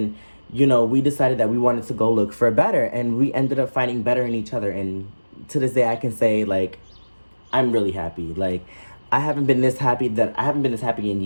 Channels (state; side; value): inverted; both; correlation -1.00